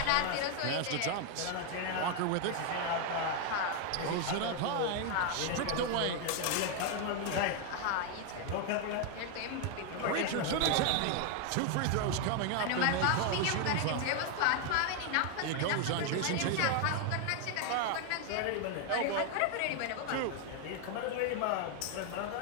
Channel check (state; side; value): different; both; correlation 0.01